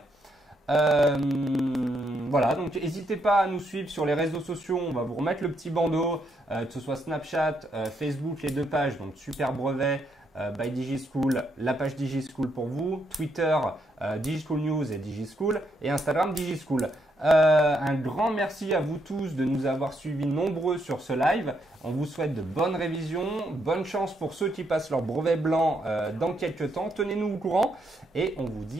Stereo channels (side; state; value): both; normal; correlation 0.77